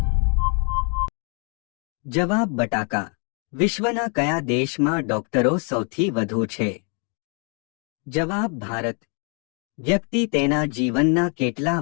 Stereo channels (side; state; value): right; quieter; 38.2 dB